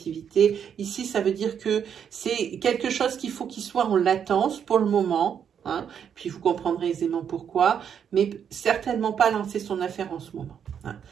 Ici, ça veut dire que c'est quelque chose qu'il faut qu'il soit en latence pour le moment. Hein, puis vous comprendrez aisément pourquoi, mais certainement pas lancer son affaire en ce moment. Hein.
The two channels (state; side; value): quieter; left; 8.0 dB